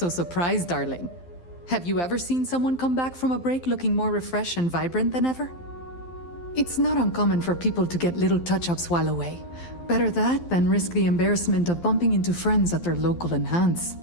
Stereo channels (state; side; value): late; right; 12 ms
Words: surprised, darling. Have you ever seen someone come back from a break looking more refreshed and vibrant than ever? It's not uncommon for people to get little touch-ups while away. Better that than risk the embarrassment of bumping into friends at their local enhance.